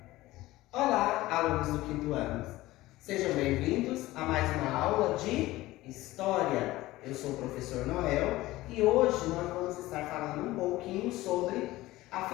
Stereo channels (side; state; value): right; quieter; 17.7 dB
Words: Olá, alunos do quinto ano! Sejam bem-vindos a mais uma aula de História. Eu sou o professor Noel e hoje nós vamos estar falando um pouquinho sobre a